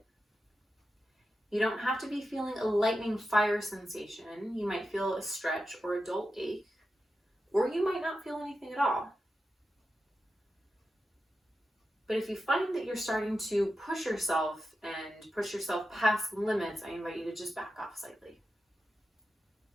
You don't have to be feeling a lightning fire sensation. You might feel a stretch or a dull ache, or you might not feel anything at all. But if you find that you're starting to push yourself and push yourself past the limits, I invite you to just back off slightly.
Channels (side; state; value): both; normal; correlation 0.90